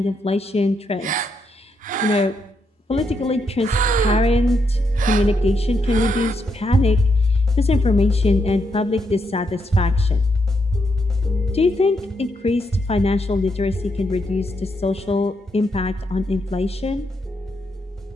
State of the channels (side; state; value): both; normal; correlation 0.80